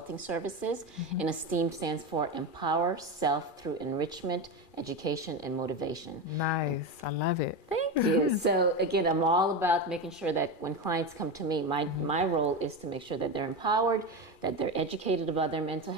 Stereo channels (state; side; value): late; right; 2.4 ms